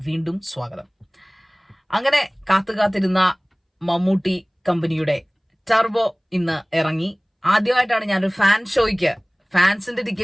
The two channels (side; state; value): both; identical; correlation 1.00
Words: വീണ്ടും സ്വാഗതം. അങ്ങനെ കാത്തിരുന്ന മമ്മൂട്ടി കമ്പനിയുടെ ടർബോ ഇന്ന് ഇറങ്ങി. ആദ്യമായിട്ടാണ് ഞാനൊരു ഫാൻസിന്റെ